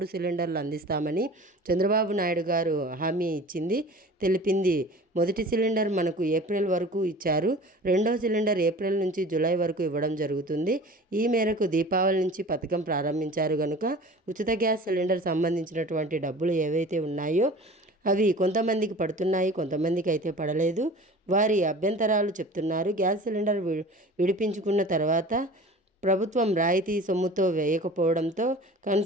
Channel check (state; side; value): normal; both; correlation 0.41